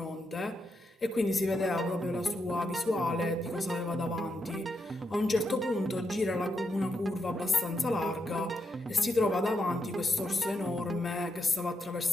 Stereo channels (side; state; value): both; normal; correlation 0.82